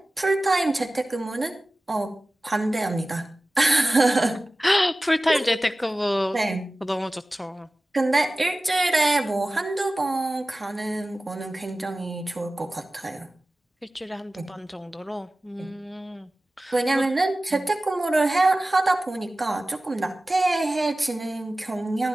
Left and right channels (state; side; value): normal; both; correlation 0.96